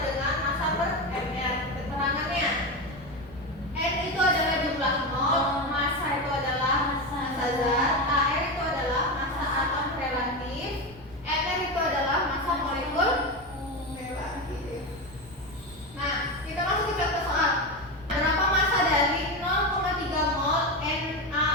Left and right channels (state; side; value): noise; left; rumble, 23 dB below the sound